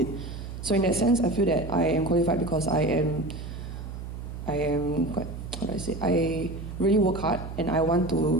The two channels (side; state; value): right; noise; hum, 9 dB below the sound